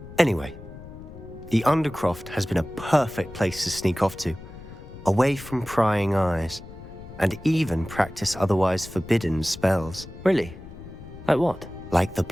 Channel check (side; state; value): left; noise; rumble, 16 dB below the sound